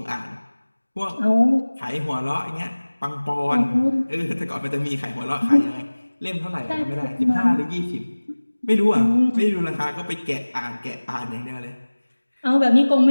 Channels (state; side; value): inverted; both; correlation -1.00